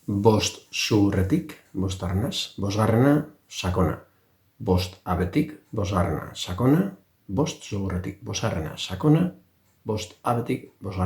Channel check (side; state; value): both; identical; correlation 1.00